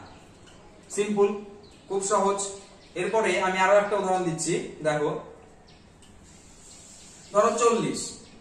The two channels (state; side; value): identical; both; correlation 1.00